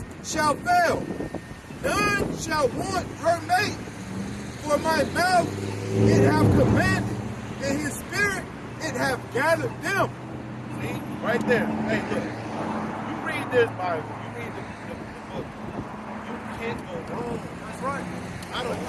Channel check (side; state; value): both; identical; correlation 1.00